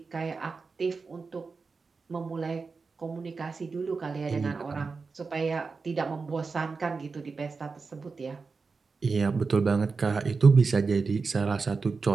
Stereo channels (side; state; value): left; quieter; 4.5 dB